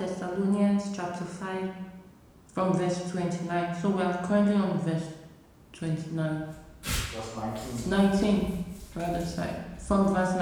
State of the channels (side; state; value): both; identical; correlation 1.00